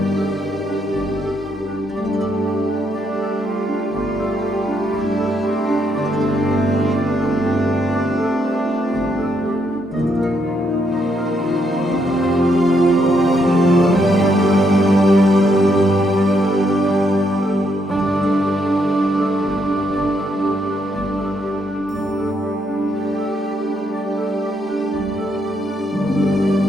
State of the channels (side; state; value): both; normal; correlation 0.75